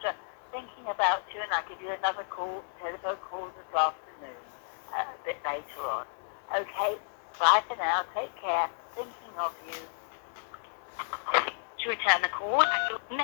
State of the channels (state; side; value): silent; right; digital silence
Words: thinking about you, and I'll give you another telephone call this afternoon, a bit later on. Okay, bye for now. Take care. Thinking of you. To return the call,